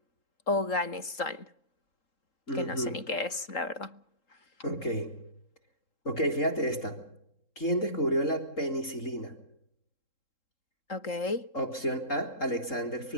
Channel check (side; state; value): right; late; 3.8 ms